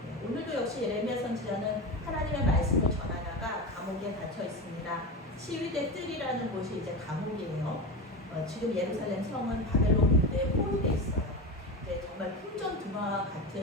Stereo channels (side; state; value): both; normal; correlation 0.23